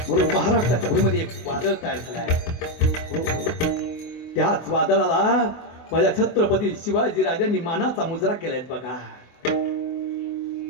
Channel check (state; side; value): late; right; 24 ms